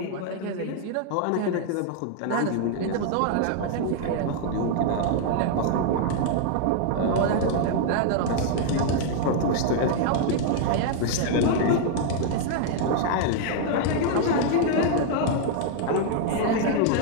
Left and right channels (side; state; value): both; different; correlation 0.00